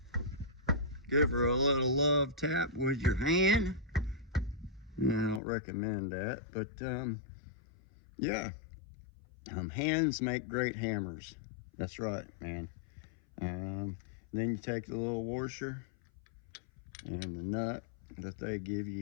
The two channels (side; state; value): right; drops out; at 5.4 s